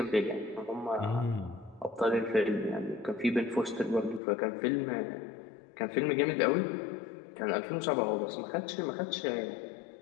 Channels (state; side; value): drops out; right; at 4.2 s